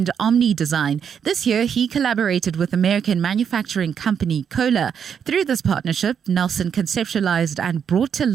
Omni Design. This year, he collaborated with American manufacturing company Kohler. Through this partnership, Nelson conceptualized and brought to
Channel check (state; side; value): quieter; left; 7.6 dB